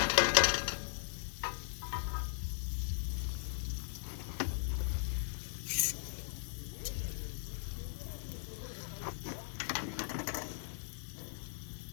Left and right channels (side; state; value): right; silent; digital silence